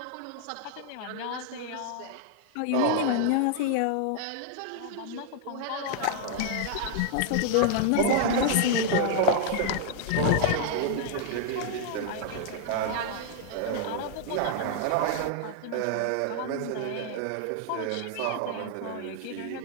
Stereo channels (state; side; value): different; both; correlation 0.00